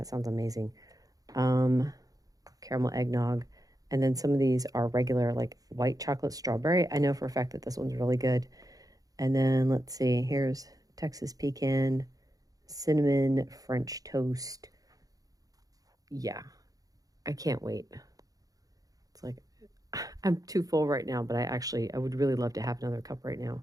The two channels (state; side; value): late; left; 0.17 ms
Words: sounds amazing. Caramel eggnog. And then some of these are regular, like white chocolate strawberry. I know for a fact that this one's really good. And then let's see, here's Texas pecan, cinnamon French toast. Yeah, I can't wait. It's like, I'm too full right now, but I would really love to have another cup right now.